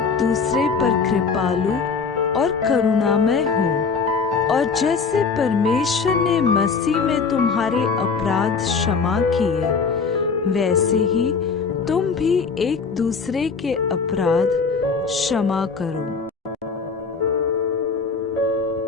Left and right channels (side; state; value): right; quieter; 5.2 dB